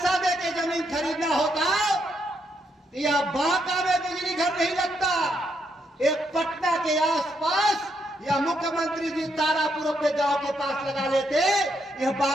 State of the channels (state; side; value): normal; both; correlation 0.77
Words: देके जमीन खरीदना होता तो यह बांका में बिजली घर नहीं लगता। एक पटना के आसपास या मुख्यमंत्री जी तारापुर अपने गांव के पास लगा लेते, यह